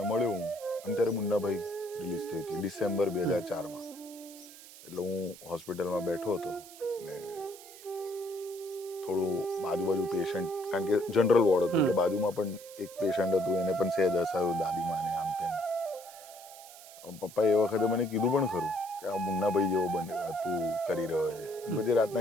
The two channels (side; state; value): right; noise; hiss, 18 dB below the sound